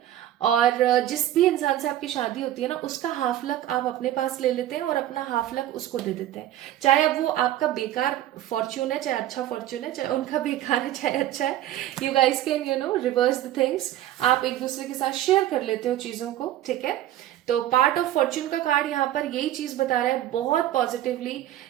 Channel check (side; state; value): left; quieter; 13.0 dB